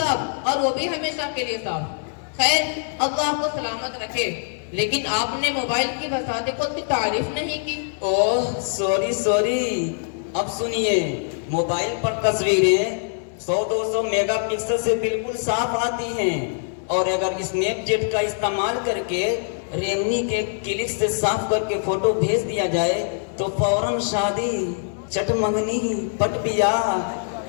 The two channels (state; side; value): silent; right; digital silence